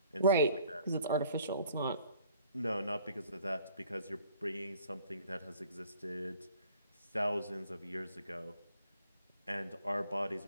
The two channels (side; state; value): both; inverted; correlation -0.56